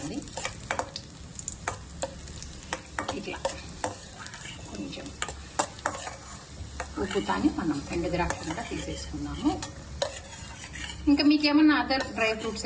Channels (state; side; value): identical; both; correlation 1.00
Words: ఇట్లా కొంచెం ఉప్పుతాని మనం ఎండు ద్రాక్ష కూడా తీసేసుకున్నాము. ఇంకా మీకు ఏమన్నా అదర్ డ్రై ఫ్రూట్స్